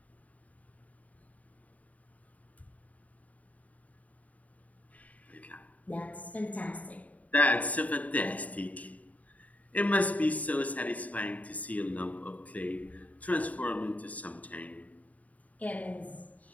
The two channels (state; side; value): late; right; 0.071 ms